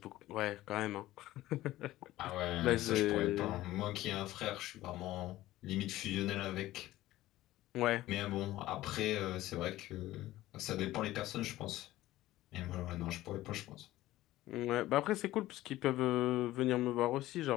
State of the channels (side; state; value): right; quieter; 15.9 dB